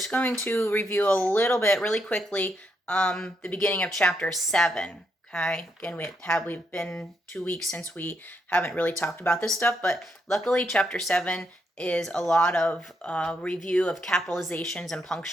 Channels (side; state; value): both; normal; correlation 0.78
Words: going to review a little bit really quickly the beginning of chapter 7. Okay. Again, we've been 2 weeks since we haven't really talked about this stuff, but luckily chapter 7 is a lot of review of capitalizations and